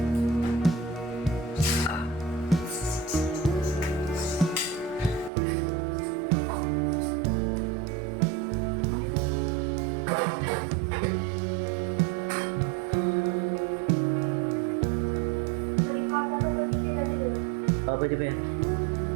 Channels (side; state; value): left; drops out; at 5.3 s